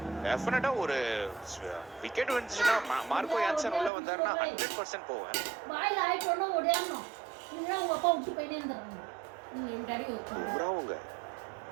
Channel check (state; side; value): drops out; left; at 3.9 s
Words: டெஃபினட்டா ஒரு விக்கெட் வந்துச்சுன்னா மார்க்கோ யான்சன் உள்ள வந்தாருன்னா 100% போவேன்.